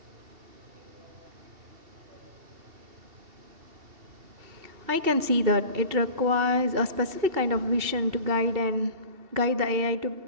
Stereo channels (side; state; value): left; late; 2.7 ms